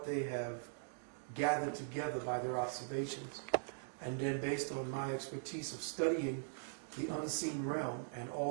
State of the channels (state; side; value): silent; left; digital silence